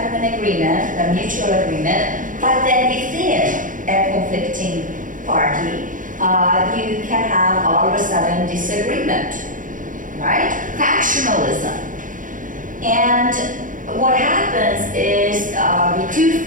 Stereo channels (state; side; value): late; left; 0.38 ms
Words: of an agreement, a mutual agreement, but then within a conflicting party, you can have all of a sudden disagreement, right? Factionalism. And what happens is the two